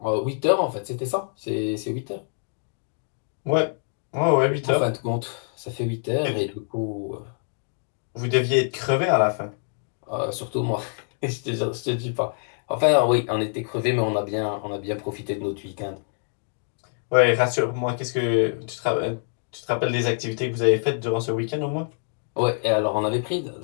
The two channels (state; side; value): silent; right; 61 dB below the other